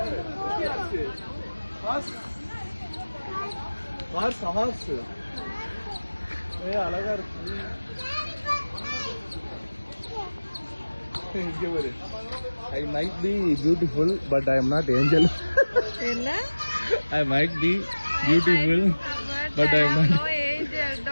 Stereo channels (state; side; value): inverted; both; correlation -1.00